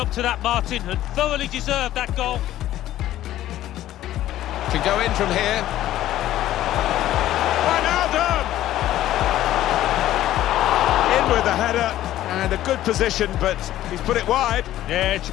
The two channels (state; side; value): quieter; right; 13.6 dB